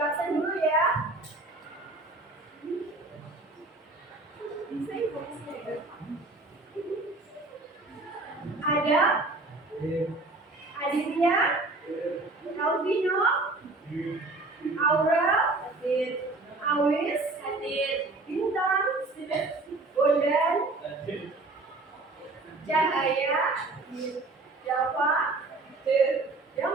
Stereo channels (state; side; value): quieter; left; 3.1 dB